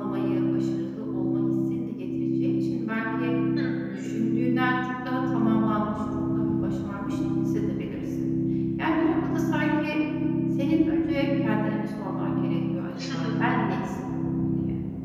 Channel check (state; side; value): identical; both; correlation 1.00